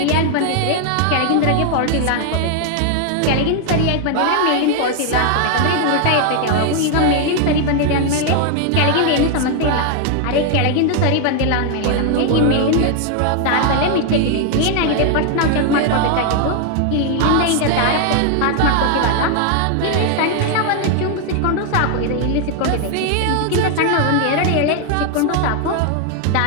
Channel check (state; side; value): different; both; correlation 0.00